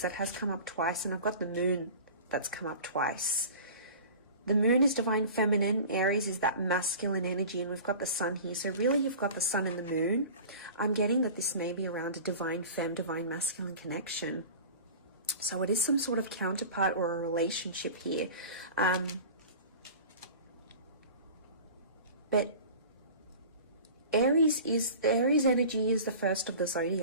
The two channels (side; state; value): both; inverted; correlation -0.38